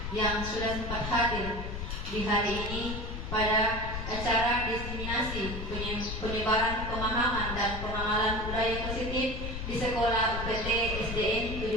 yang sudah sempat hadir di hari ini pada acara diseminasi penyebaran pemahaman dan pengenalan budaya positif di Sekolah UPT SDN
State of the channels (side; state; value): left; noise; rumble, 5 dB below the sound